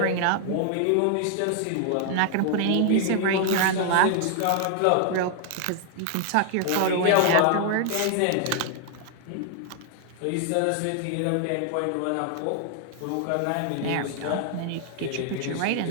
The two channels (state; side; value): different; both; correlation 0.00